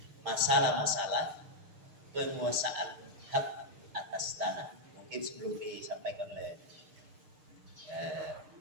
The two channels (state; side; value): late; left; 6.6 ms